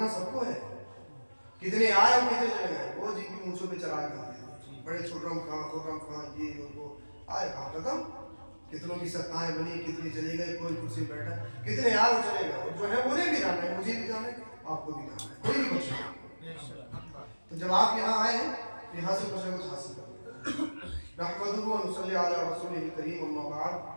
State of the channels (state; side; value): inverted; both; correlation -1.00